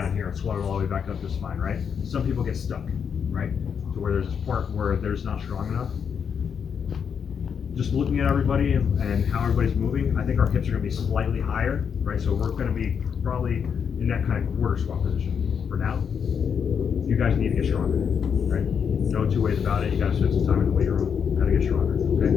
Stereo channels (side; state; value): right; quieter; 7.1 dB